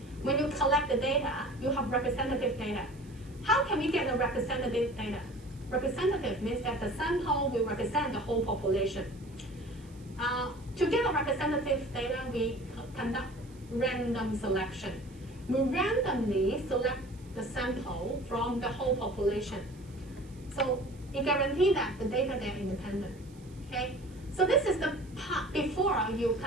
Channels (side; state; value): right; noise; hiss, 27 dB below the sound